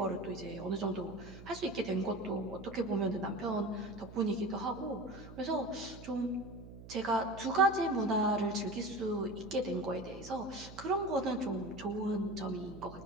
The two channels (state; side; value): noise; right; hum, 15 dB below the sound